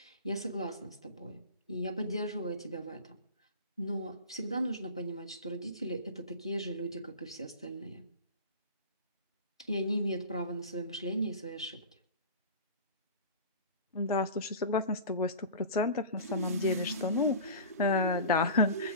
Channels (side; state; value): both; inverted; correlation -0.33